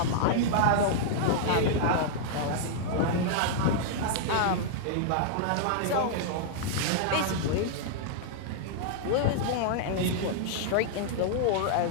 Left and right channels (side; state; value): both; different; correlation -0.01